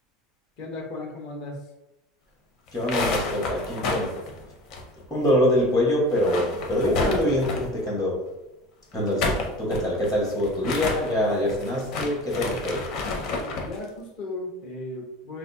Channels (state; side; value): normal; both; correlation 0.39